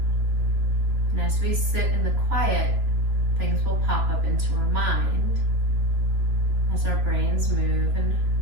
And as we sit in the quiet, things will pop up into our mind as our brains move and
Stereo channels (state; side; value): late; left; 3.1 ms